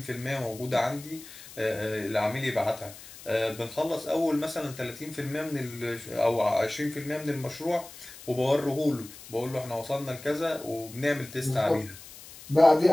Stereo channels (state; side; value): noise; left; hiss, 17 dB below the sound